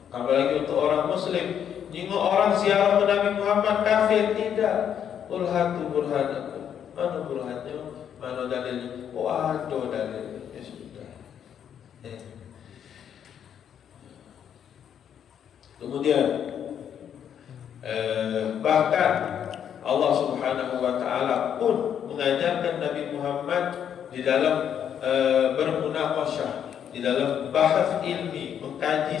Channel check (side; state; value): right; quieter; 8.9 dB